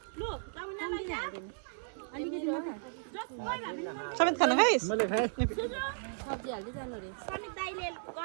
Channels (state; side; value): silent; left; digital silence